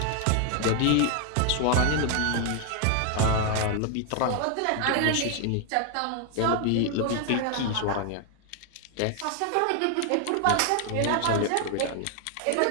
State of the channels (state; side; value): different; both; correlation 0.00